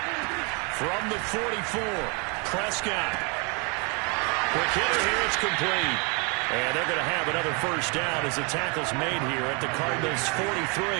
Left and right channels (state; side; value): quieter; left; 33.0 dB